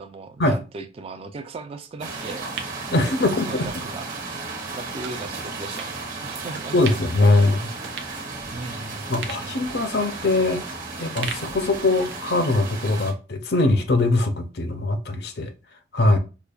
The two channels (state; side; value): normal; both; correlation 0.53